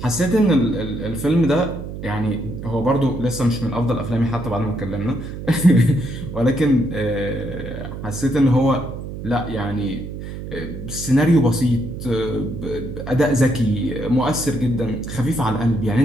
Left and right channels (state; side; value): noise; right; hum, 9 dB below the sound